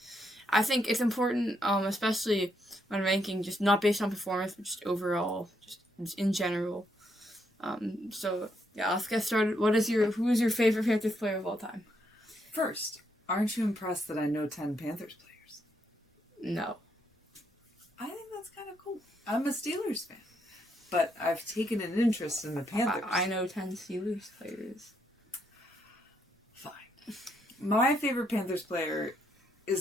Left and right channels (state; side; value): normal; both; correlation 0.76